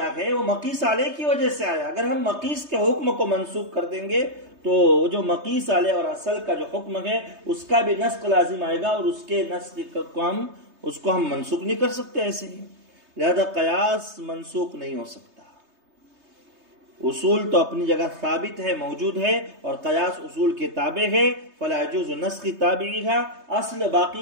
ہے وہ مقیس علیہ کی وجہ سے آیا۔ اگر ہم مقیس کے حکم کو منسوخ کر دیں گے تو جو مقیس علیہ اور اصل کا جو حکم ہے اس کا بھی نسخ لازم آئے گا، اور اس کے نسخ کو ہم منسوخ نہیں کر سکتے ایسے ہی، لہذا قیاس منسوخ نہیں ہو سکتا۔ اصول تو اپنی جگہ ثابت ہے، موجود ہے، اور قیاس اصول کے تابع ہے، فلا يجوز نسخ تابعیھا، اصل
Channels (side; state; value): left; late; 3.3 ms